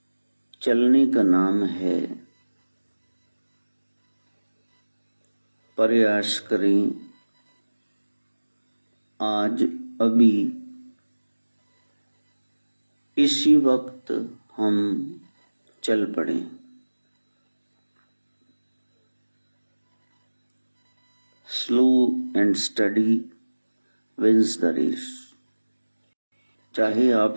चलने का नाम है। प्रयास करें आज अभी इसी वक्त हम चल पड़े। Slow and steady wins the race. चाहे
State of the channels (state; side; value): inverted; both; correlation -1.00